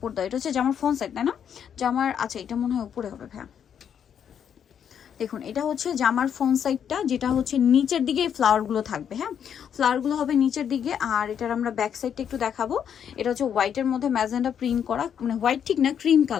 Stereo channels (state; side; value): quieter; right; 8.4 dB